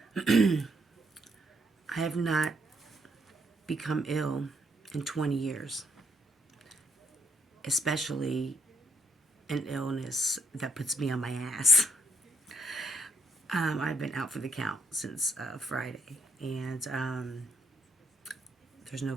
I have not become ill in 20 years, especially an illness that puts me on my ass. I've been out for the count since Friday, and there's no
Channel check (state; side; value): normal; both; correlation 0.73